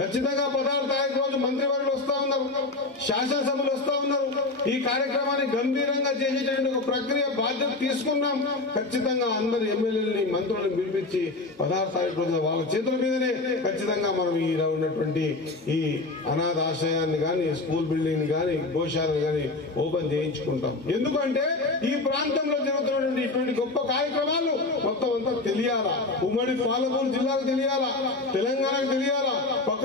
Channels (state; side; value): quieter; right; 3.2 dB